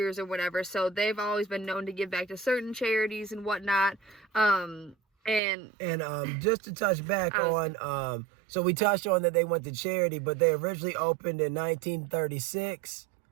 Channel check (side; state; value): left; drops out; at 5.4 s